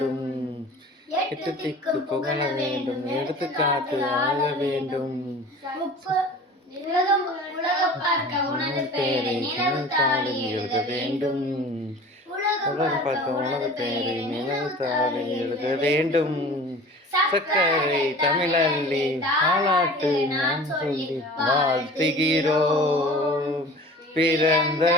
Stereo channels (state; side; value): normal; both; correlation 0.42